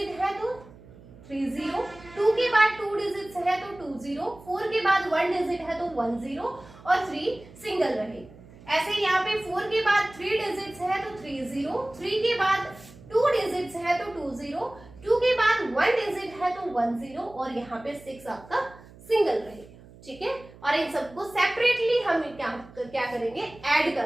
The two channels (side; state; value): right; noise; hum, 21 dB below the sound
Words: है, तो 3 0, 2 के बाद 2 डिजिट्स है, तो 2 0, 4 के बाद 1 डिजिट है, तो 1 0, और 3 सिंगल रहे। ऐसे यहाँ पे 4 के बाद 3 डिजिट्स है, तो 3 0, 3 के बाद 2 डिजिट्स है, तो 2 0, 2 के बाद 1 डिजिट है, तो 1 0, और यहाँ पे 6 आपका सिंगल रहेगा, ठीक है। और इन सबको सेपरेटली हम क्या करेंगे, ऐड कर